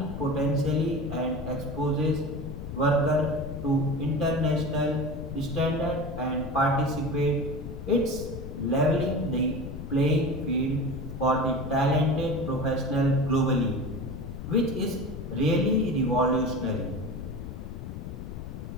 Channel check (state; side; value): noise; left; rumble, 9 dB below the sound